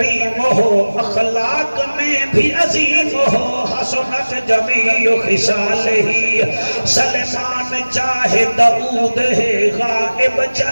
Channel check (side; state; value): both; inverted; correlation -1.00